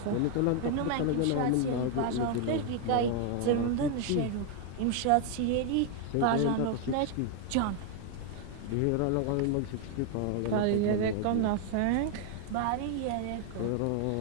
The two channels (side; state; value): both; different; correlation 0.00